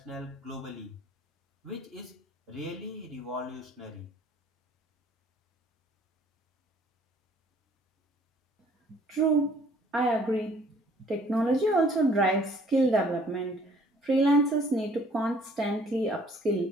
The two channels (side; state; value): both; normal; correlation 0.58